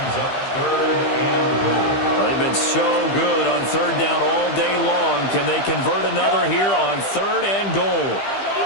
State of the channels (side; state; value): right; late; 15 ms